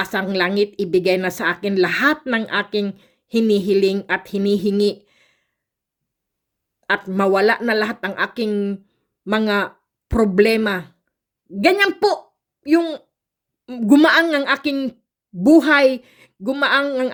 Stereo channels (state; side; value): identical; both; correlation 1.00